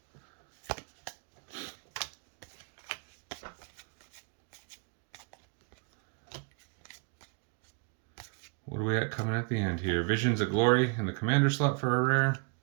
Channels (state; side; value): quieter; left; 34.3 dB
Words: What do we got coming at the end here? Visions of Glory in the Commander slot for a rare.